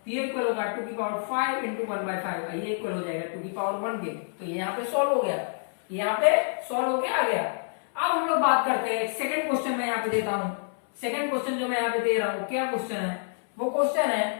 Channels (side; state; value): right; silent; 60 dB below the other